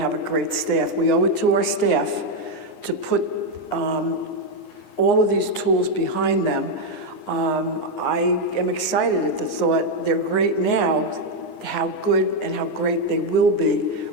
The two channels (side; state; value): right; late; 9.6 ms